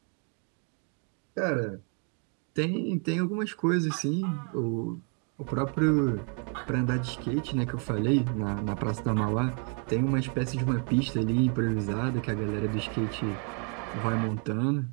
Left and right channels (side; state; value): left; quieter; 39.7 dB